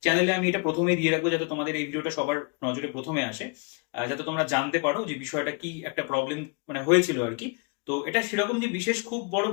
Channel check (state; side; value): quieter; right; 33.4 dB